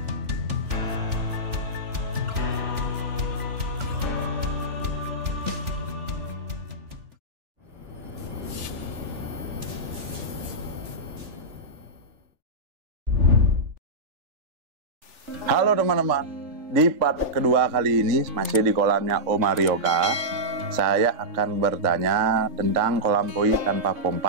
Halo teman-teman, di part kedua kali ini masih di kolamnya Om Aryoga. Saya akan bertanya tentang kolam koi tanpa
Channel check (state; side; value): late; left; 3.4 ms